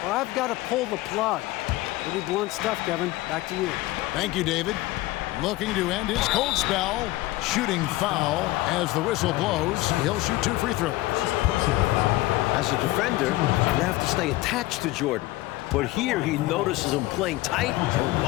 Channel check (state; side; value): quieter; right; 18.3 dB